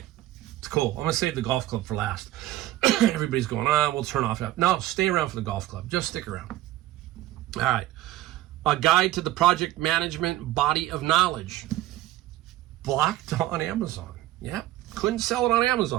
it's cool. I'm going to save the golf club for last. Everybody's going, we'll turn off that. No, stay around for the golf club. Just stick around. All right. A guide to the project management body of knowledge. Blocked on Amazon. Yep. Couldn't sell it on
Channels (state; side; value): quieter; left; 15.1 dB